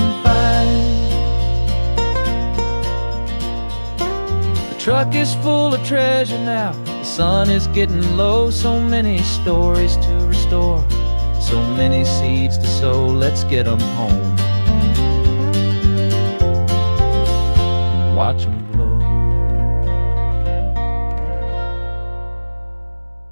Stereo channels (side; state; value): both; inverted; correlation -1.00